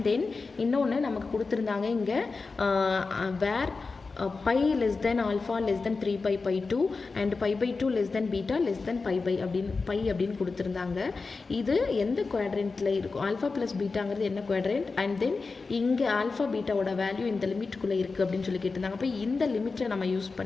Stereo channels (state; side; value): quieter; right; 4.2 dB